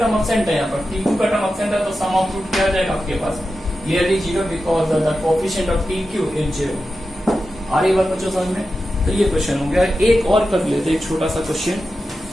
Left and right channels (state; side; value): normal; both; correlation 0.91